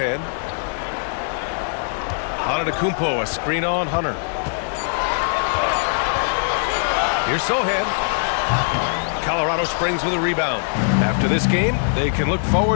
Antetokounmpo, a screen on Hunter. Here's Sohan. Colorado Springs with a rebound. After this game, they can look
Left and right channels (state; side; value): silent; right; digital silence